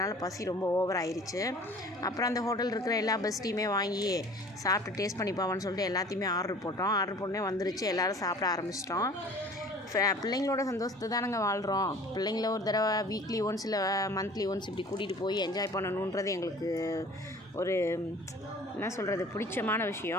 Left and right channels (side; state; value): both; normal; correlation 0.47